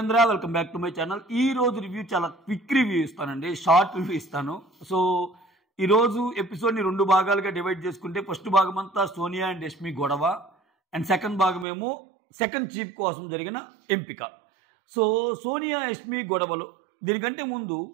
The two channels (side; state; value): left; drops out; at 11.7 s